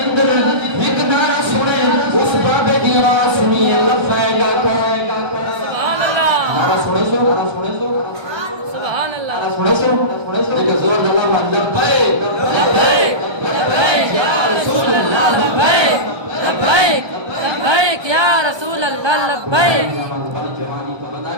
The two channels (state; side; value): late; left; 1.2 ms